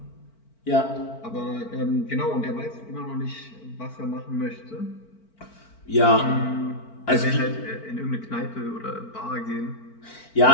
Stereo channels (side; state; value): right; late; 4.5 ms